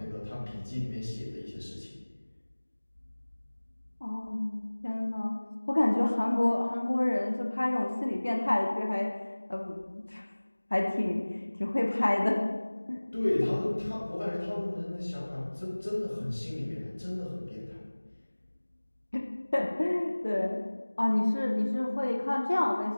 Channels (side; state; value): both; inverted; correlation -1.00